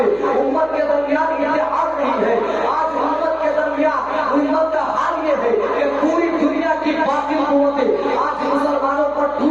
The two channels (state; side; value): noise; left; hum, 26 dB below the sound